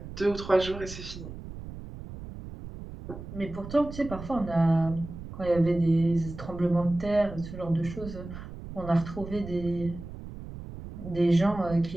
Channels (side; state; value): right; noise; rumble, 12 dB below the sound